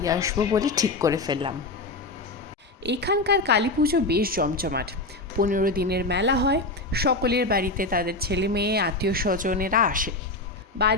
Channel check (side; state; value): right; quieter; 3.0 dB